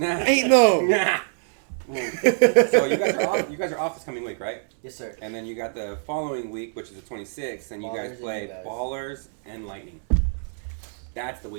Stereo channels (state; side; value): silent; left; digital silence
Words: Ain't no. Nah. So you guys are off. You guys are off this coming week, right? yes, sir. And then you got the following week, which is the 26th, and you Ballers guys and play you guys. Ballers and Lightning. That's the